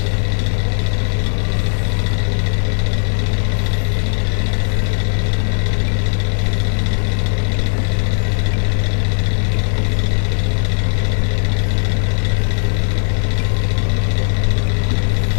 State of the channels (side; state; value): right; silent; digital silence